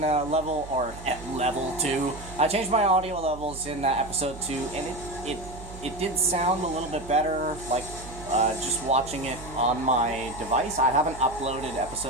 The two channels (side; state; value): right; noise; hum, 14 dB below the sound